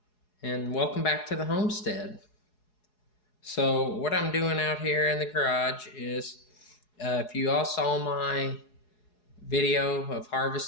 and welcome back to the homestead. So what I'm doing out here in the garage is, if you all saw my video of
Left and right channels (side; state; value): right; late; 4.8 ms